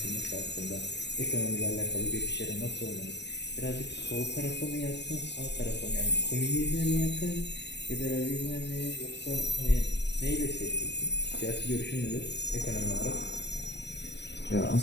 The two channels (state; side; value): late; right; 0.50 ms